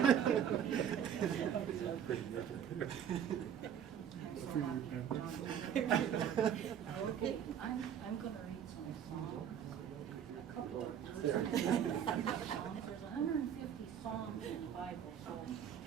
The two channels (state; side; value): quieter; left; 8.9 dB